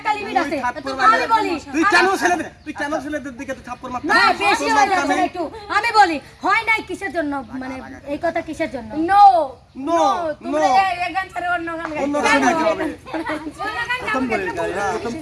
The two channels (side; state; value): both; identical; correlation 1.00